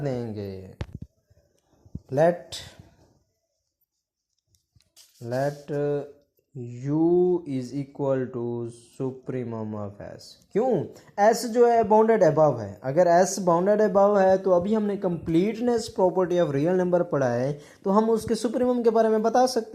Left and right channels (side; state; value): both; identical; correlation 1.00